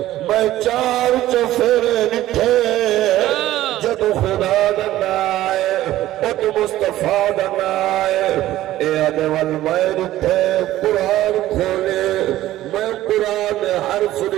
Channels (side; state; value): left; quieter; 14.6 dB